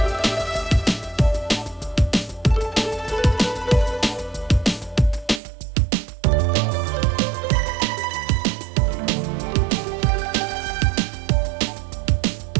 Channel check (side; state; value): left; drops out; at 5.4 s